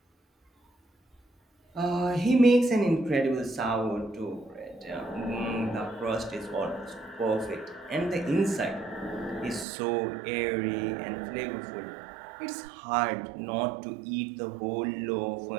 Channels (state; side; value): drops out; left; at 9.7 s